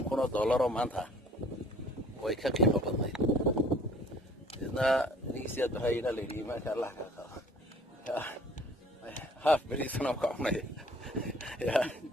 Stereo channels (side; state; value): both; normal; correlation 0.54